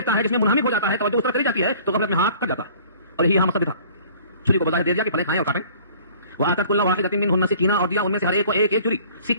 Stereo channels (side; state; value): both; inverted; correlation -0.50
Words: ہے جس میں منہمک ہو جاتا ہے، توجہ اس پر کری جاتی ہے، تو غفلت میں ہاتھ کٹ جاتا ہے. اور یہی یہاں مقصد تھا. چھری کو بظاہر دے دیا کہ پھلیں کھائیں اور کاٹیں. وآتت کل واحدۃ منہن سکینہ، اور دیا ان میں سے ہر ایک کو ایک ایک چھری.